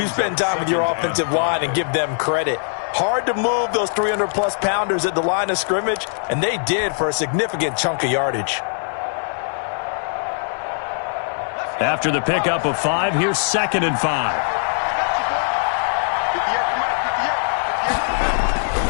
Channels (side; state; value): right; silent; digital silence